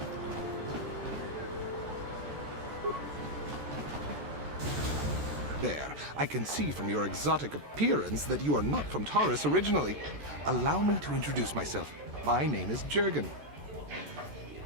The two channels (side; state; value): left; late; 14 ms